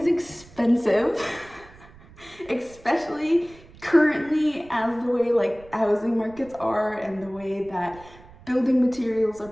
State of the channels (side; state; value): right; noise; rumble, 23 dB below the sound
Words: expensive, especially currently as the way like housing markets are and the way that building materials are